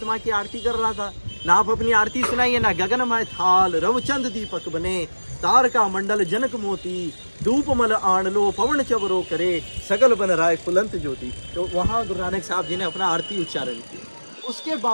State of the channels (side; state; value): both; inverted; correlation -1.00